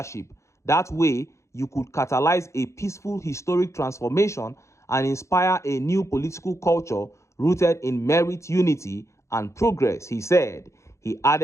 That way, you could catalyze a peaceful historic transformation and inspire a new political culture rooted in merit, unity, and progress, he said. He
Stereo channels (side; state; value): right; late; 0.14 ms